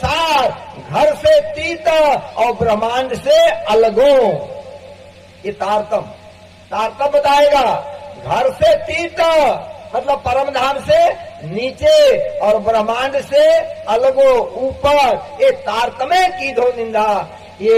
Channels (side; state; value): both; identical; correlation 1.00